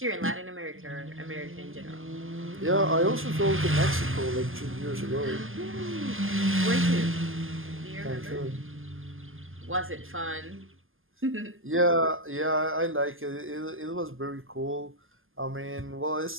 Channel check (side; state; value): left; late; 0.59 ms